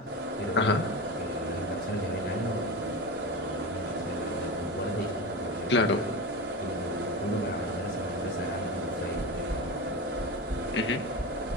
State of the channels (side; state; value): both; normal; correlation 0.23